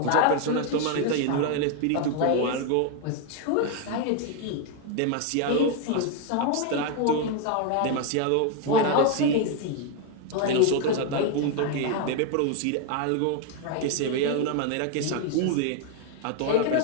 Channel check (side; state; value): both; different; correlation 0.01